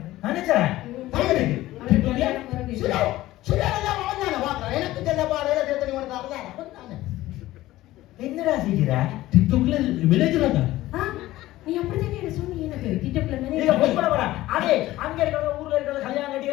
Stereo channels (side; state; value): right; quieter; 16.3 dB